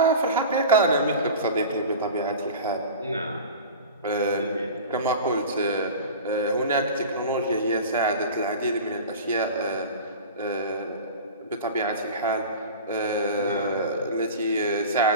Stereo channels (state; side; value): inverted; both; correlation -0.34